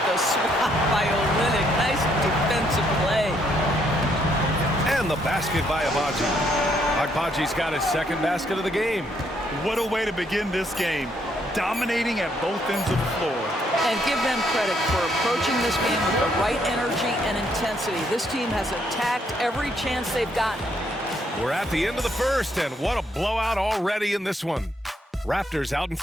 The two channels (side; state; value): both; normal; correlation 0.72